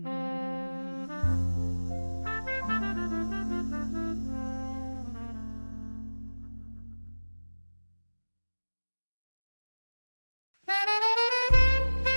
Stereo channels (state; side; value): inverted; both; correlation -1.00